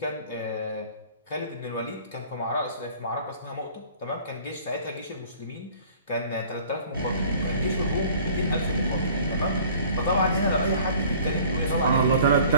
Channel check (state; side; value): inverted; both; correlation -0.50